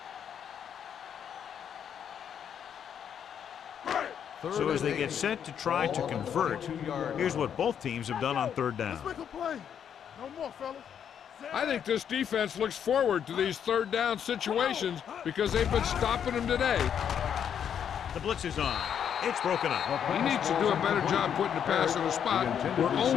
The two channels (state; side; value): quieter; right; 8.5 dB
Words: So as they get set to try to convert, here's what both teams have done on third down. Let's make a play. No more, fellas. I think this defense looks forward to these third down situations because they've been stopping them today. The blitz is on. It's broken up. He needs to do a better job putting the pass in a spot where